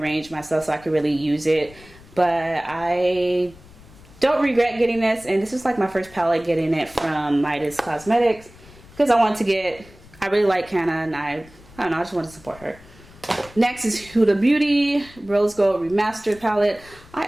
myself so I can really use it, but I don't regret getting this, and this is like my first palette getting it from Midas Cosmetics because I wanted to get, I really like Hannah, and I don't know, I just want to support her. Next is Huda Beauty Rose Gold Remastered palette. I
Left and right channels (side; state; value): left; noise; rumble, 22 dB below the sound